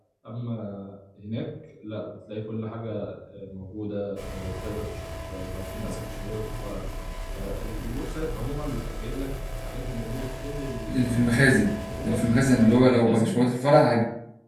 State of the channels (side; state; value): both; identical; correlation 1.00